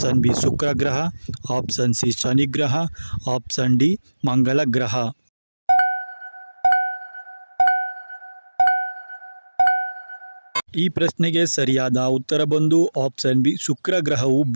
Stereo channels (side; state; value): both; inverted; correlation -1.00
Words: ಬಿ ಶುಕ್ರ ಗ್ರಹ, ಆಪ್ಷನ್ ಸಿ ಶನಿ ಗ್ರಹ, ಆಪ್ಷನ್ ಡಿ ಮಂಗಳ ಗ್ರಹ. ಈ ಪ್ರಶ್ನೆಗೆ ಸರಿಯಾದ ಉತ್ತರ ಬಂದು ಆಪ್ಷನ್ ಬಿ ಶುಕ್ರ ಗ್ರಹವು